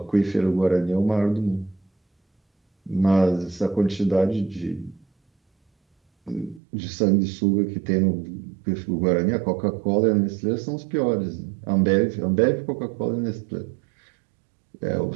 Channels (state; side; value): drops out; left; at 6.6 s